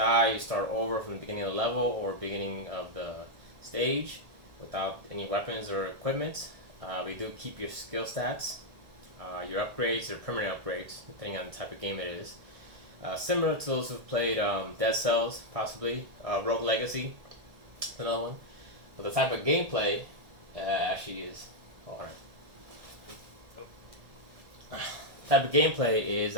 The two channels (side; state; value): left; late; 1.7 ms